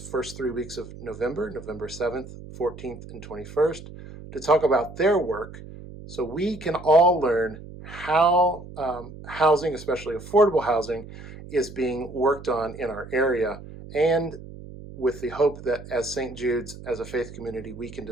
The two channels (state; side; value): noise; right; hum, 15 dB below the sound